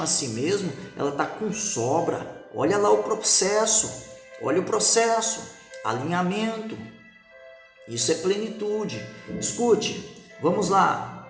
a si mesmo, ela está com sobra. Olha lá o processo, alinhamento. Isso é plenitude. Escute, vamos lá.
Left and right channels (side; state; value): both; identical; correlation 1.00